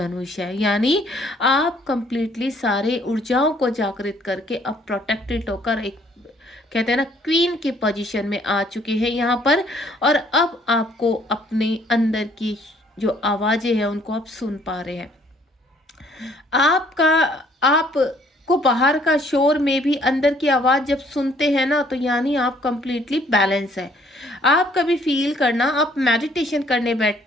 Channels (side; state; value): both; normal; correlation 0.62